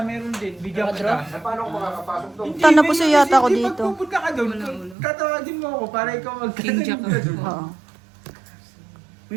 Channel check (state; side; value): drops out; left; at 5.0 s